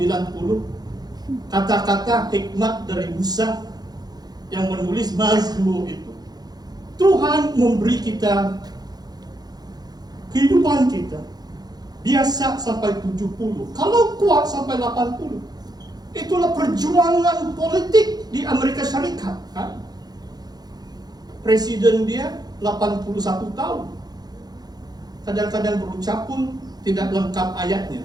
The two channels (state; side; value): late; left; 0.19 ms